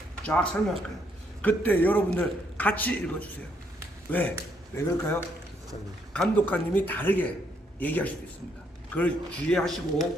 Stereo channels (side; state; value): both; normal; correlation 0.73